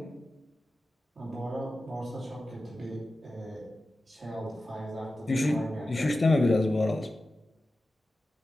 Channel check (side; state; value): both; normal; correlation 0.93